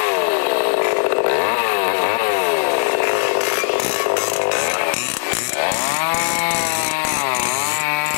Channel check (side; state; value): right; silent; 58 dB below the other